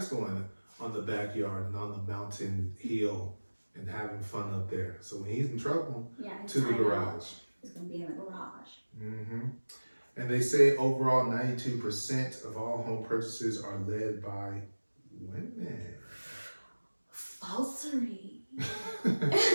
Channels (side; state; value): both; inverted; correlation -1.00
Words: going on the backyard and on the mountain hill and having fun up there. So when he's in trouble, to the garage. It's gonna be in the garage. And they say overall 92% of all home purchases are led by women. Falsery.